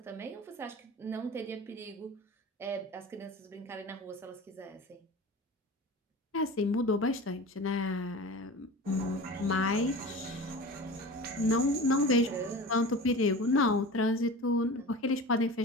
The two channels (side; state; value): both; normal; correlation 0.34